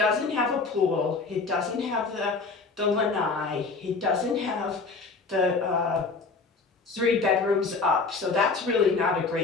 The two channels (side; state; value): right; quieter; 4.2 dB